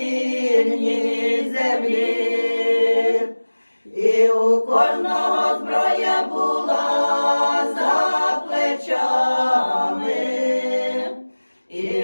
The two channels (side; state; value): both; inverted; correlation -1.00